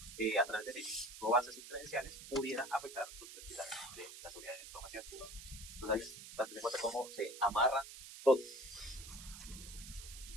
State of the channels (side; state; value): right; noise; hiss, 13 dB below the sound